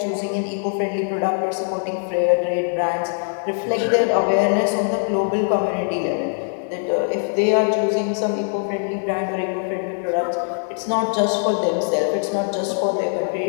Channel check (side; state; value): right; silent; 63 dB below the other